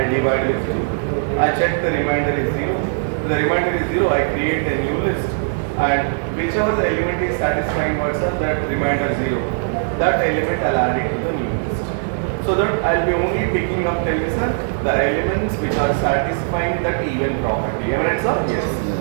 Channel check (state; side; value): silent; left; digital silence